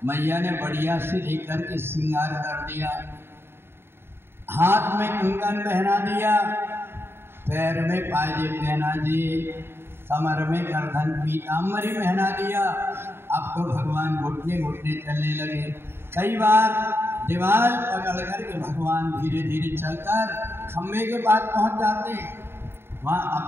मैया ने बढ़िया से लेकर के श्रृंगार कर दिया, हाथ में कंगन पहना दिया, पैर में पायजे पहना दिए, कमर में गर्दन पीताम्बरी पहना दिया। अब तो भगवान घुटने घुटने चलने लगे। कई बार दीवार पकड़ करके भगवान धीरे धीरे चलकर खम्भे के पास पहुंच जाते हैं। वहाँ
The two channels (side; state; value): left; late; 0.11 ms